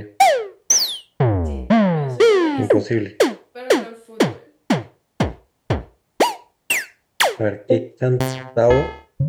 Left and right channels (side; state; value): both; identical; correlation 1.00